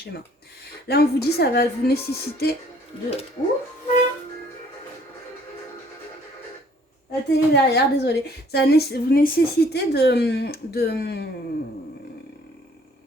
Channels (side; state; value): both; normal; correlation 0.59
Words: Là, on vous dit, ça va vous nécessiter de... Ouh, la télé derrière, désolé. Ça va vous nécessiter